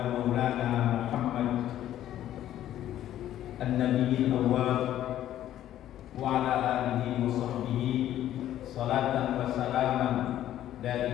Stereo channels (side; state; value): right; quieter; 12.2 dB